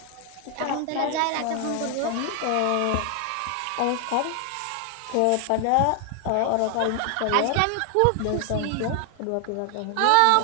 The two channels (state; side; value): different; both; correlation 0.00